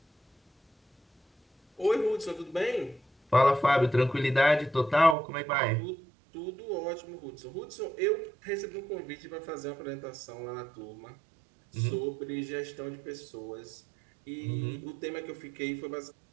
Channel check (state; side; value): drops out; left; at 5.2 s